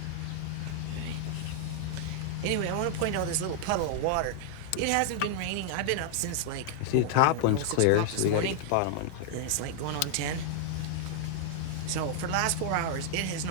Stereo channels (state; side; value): different; both; correlation 0.00